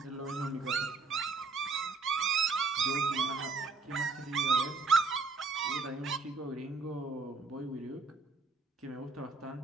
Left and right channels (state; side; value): quieter; left; 4.2 dB